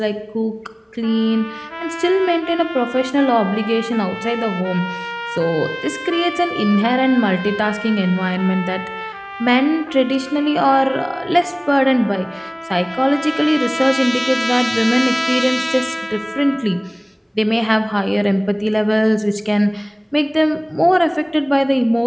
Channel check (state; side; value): identical; both; correlation 1.00